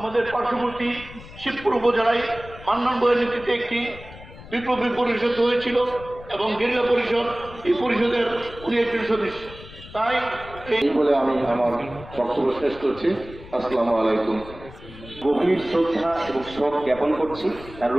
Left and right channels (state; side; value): noise; left; rumble, 17 dB below the sound